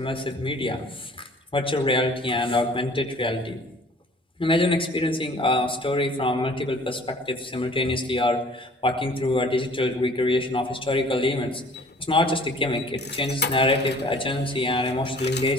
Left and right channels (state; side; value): normal; both; correlation 0.51